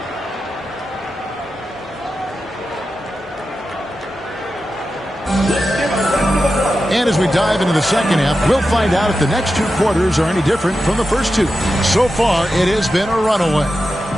And as we dive into the second half, we'll find out if the next 2 quarters are any different from the first 2. So far, it has been a runaway.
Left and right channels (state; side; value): normal; both; correlation 0.91